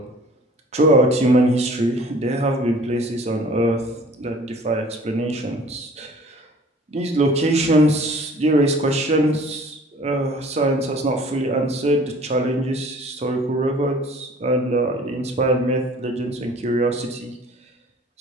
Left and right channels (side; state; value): both; normal; correlation 0.50